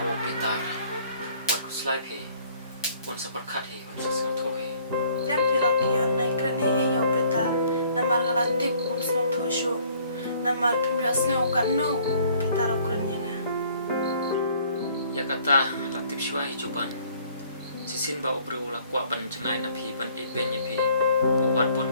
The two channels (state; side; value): inverted; both; correlation -0.59